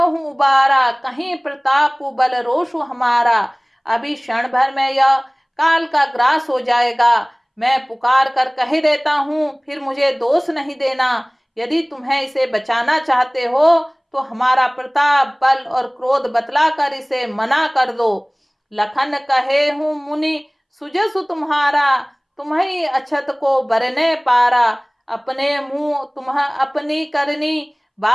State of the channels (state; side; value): identical; both; correlation 1.00